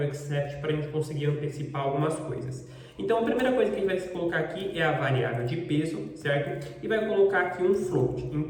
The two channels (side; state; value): both; identical; correlation 1.00